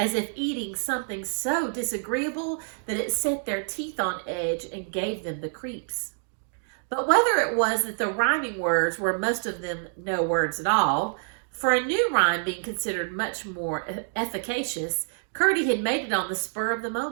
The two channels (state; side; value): silent; left; digital silence